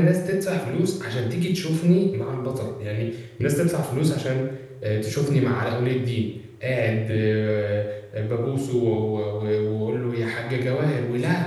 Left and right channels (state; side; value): identical; both; correlation 1.00